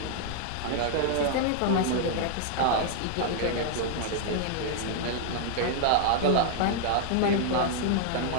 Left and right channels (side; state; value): both; different; correlation 0.00